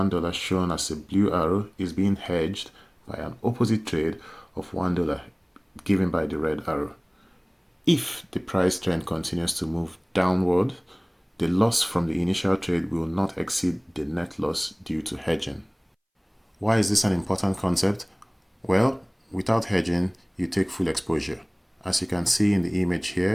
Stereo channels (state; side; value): identical; both; correlation 1.00